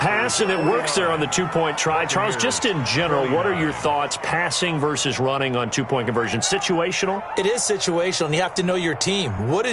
and it works there on the 2-point try. Charles, just in general, what are your thoughts passing versus running on 2-point conversion? Situational? It is situational, and you have to know your team. What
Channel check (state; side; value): identical; both; correlation 1.00